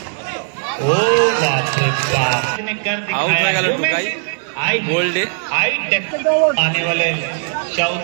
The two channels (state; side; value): silent; left; 62 dB below the other